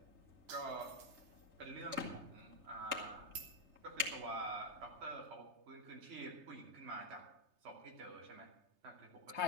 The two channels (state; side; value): late; left; 3.3 ms